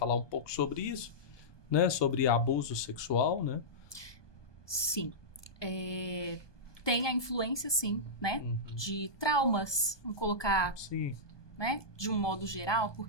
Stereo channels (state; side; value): late; right; 1.2 ms